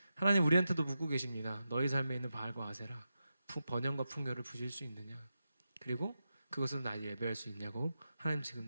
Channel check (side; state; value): both; inverted; correlation -0.89